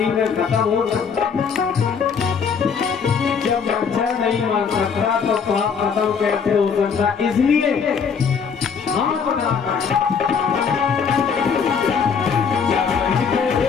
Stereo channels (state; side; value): quieter; right; 6.2 dB